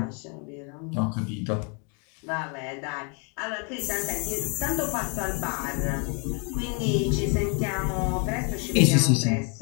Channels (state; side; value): quieter; right; 37.3 dB